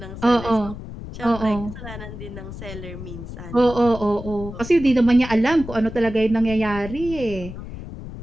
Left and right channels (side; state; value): left; noise; rumble, 11 dB below the sound